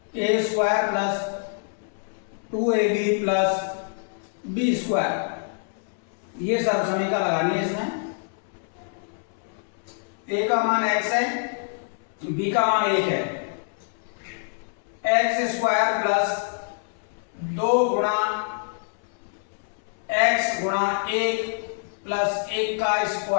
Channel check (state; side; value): silent; right; 61 dB below the other